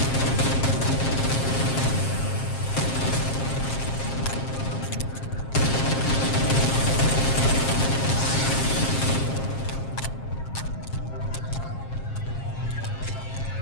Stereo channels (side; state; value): right; late; 7.5 ms